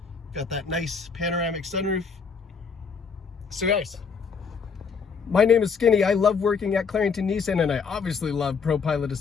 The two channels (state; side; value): quieter; right; 5.6 dB